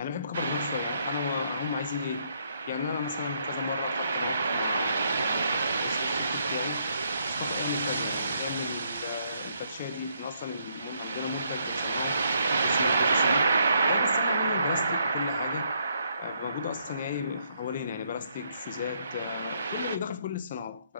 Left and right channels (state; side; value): inverted; both; correlation -0.72